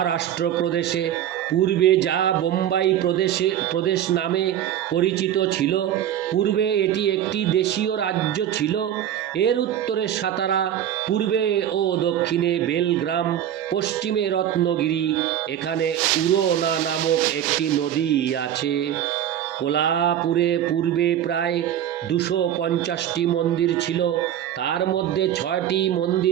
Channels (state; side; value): quieter; left; 10.8 dB